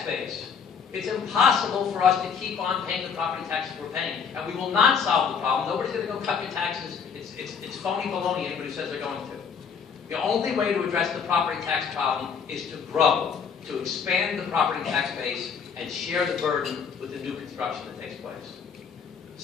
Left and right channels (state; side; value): quieter; right; 6.5 dB